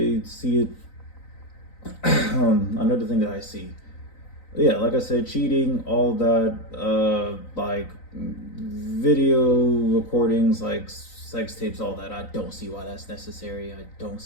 see it another thing that I see, yeah, like I said, cheating, all that, like video recordings, like sex tapes, all that. I don't see why that's necessary. I don't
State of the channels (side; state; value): right; late; 3.9 ms